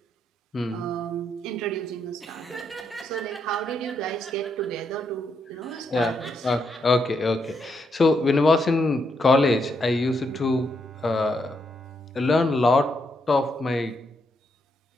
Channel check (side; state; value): both; normal; correlation 0.79